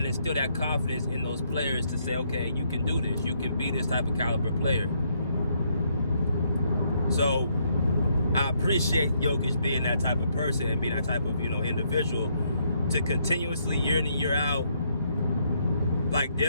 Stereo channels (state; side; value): inverted; both; correlation -0.73